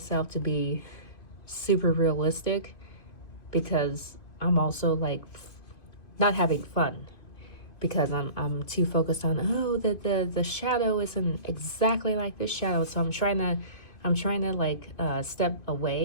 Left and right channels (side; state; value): right; late; 2.5 ms